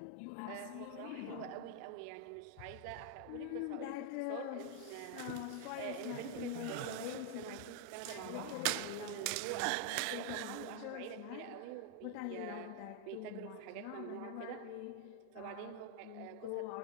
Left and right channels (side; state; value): both; different; correlation 0.00